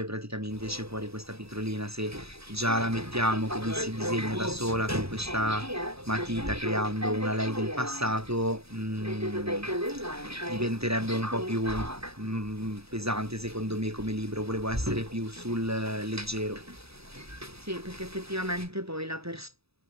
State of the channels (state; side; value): late; left; 0.78 ms